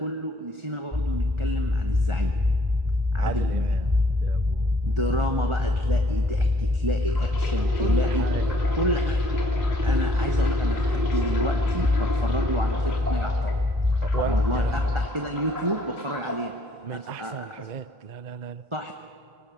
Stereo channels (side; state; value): left; late; 1.4 ms